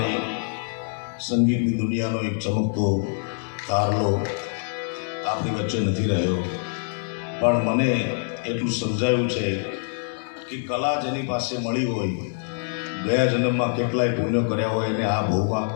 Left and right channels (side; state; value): right; silent; digital silence